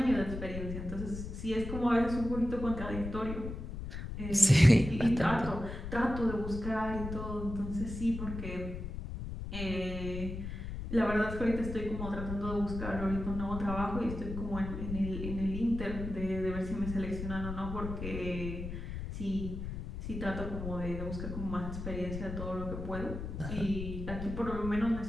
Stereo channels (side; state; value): left; noise; rumble, 7 dB below the sound